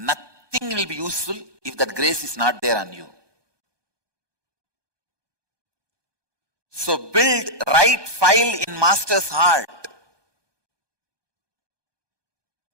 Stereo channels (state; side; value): late; left; 1.2 ms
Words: will be useful if that grace is not there on you. So build right file in master's heart.